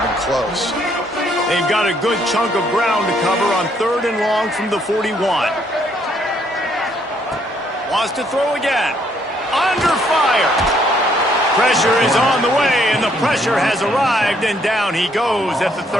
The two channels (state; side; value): normal; both; correlation 0.69